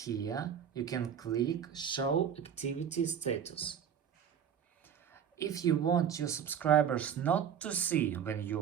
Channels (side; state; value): left; quieter; 8.4 dB